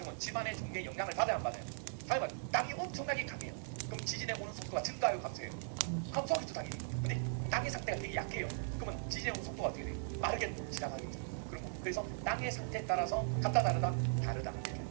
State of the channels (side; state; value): left; silent; digital silence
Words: 지반의 종류에 영향을 받아야 안 받아요? 당연히 땅이 엄청나게 강해요. 그럼 지진에 오는 속도가 증가해요, 감소해요? 감소하겠죠, 당연히. 근데 땅의 상태가 되게 약해요. 그러면 지진에 오는 속도가 어떻게 돼요? 빠르게 지나가겠죠. 그런 거. 그래서 땅의 상태에 따라서 같다 다르다 다르다. 이렇게.